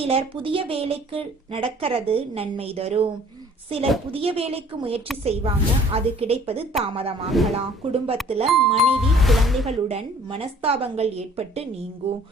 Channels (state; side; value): normal; both; correlation 0.54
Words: புதிய வேலைக்கு நடக்கிறது நன்மை தரும். சிலர் புதிய வேலைக்கு முயற்சி செய்வாங்க, அது கிடைப்பது தாமதமாகலாம். குடும்பத்துல மனைவி குழந்தைகளுடன் மனஸ்தாபங்கள் ஏற்பட்டு நீங்கும்.